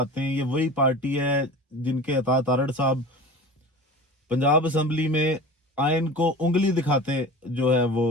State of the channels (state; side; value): normal; both; correlation 0.35